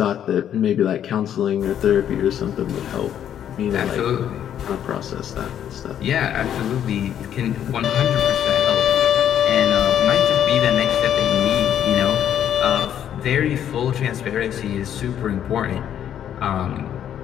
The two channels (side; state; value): right; quieter; 10.0 dB